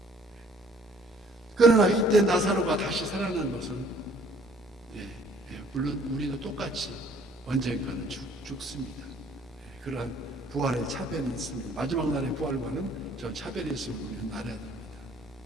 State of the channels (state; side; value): normal; both; correlation 0.58